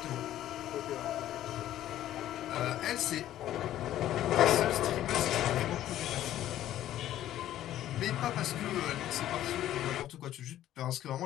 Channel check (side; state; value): right; quieter; 12.8 dB